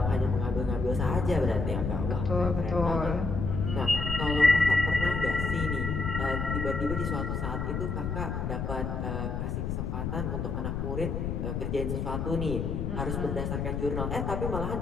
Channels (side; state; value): left; noise; rumble, 2 dB below the sound